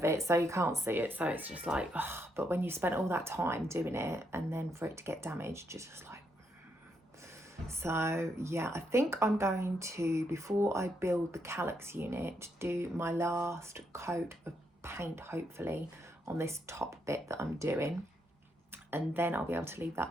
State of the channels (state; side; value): normal; both; correlation 0.78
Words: it, so you can't see it, so it's just like, oh. But when you spent all that time doing it and then for it to get damaged, you're just like, so yeah, I think I'm going to, before I build the Kallax unit, do my last coat of paint, hopefully, on this top bit that I'm doing, and then I'll be able to leave